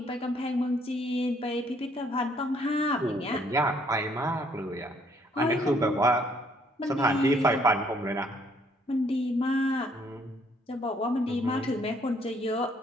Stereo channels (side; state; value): both; normal; correlation 0.65